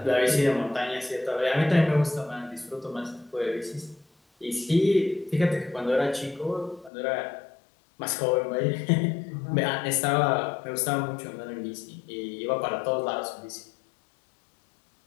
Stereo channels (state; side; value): drops out; right; at 6.9 s